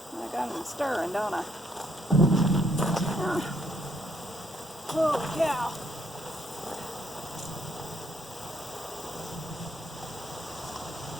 I got them stirring, don't I? Holy cow.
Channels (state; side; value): normal; both; correlation 0.71